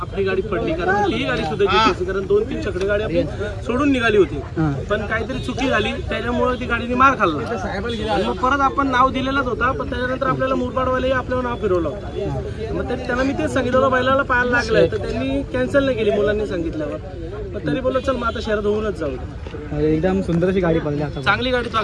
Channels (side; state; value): both; identical; correlation 1.00